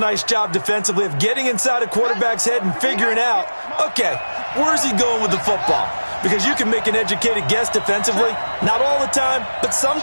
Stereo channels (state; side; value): inverted; both; correlation -1.00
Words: job defensively of getting inside a quarterback's head and figuring out, okay, where's he going with the football? Because you can make an educated guess defensively, not all the time, but